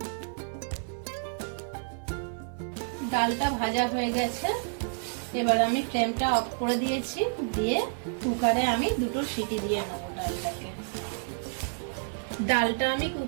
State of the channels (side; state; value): left; silent; 58 dB below the other